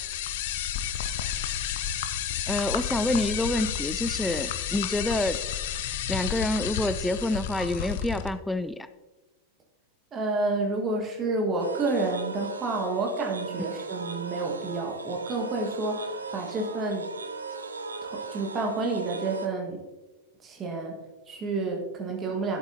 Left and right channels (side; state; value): both; normal; correlation 0.32